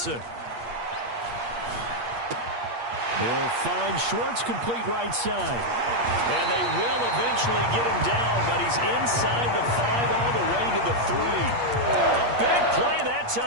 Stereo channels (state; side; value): late; left; 8.5 ms